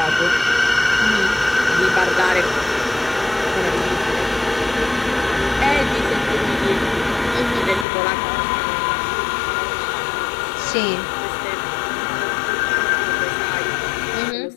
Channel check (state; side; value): drops out; right; at 7.9 s